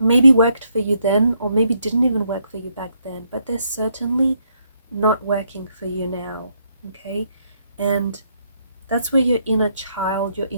worked for you then, or maybe didn't even work for you back then, but they're certainly not working for you now, okay? And that's where your inner child, your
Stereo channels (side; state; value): both; inverted; correlation -0.74